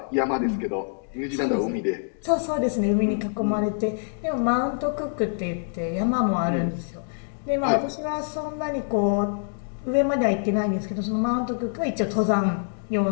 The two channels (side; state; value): right; silent; digital silence